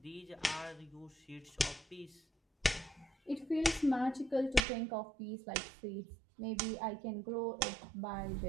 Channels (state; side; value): drops out; left; at 4.7 s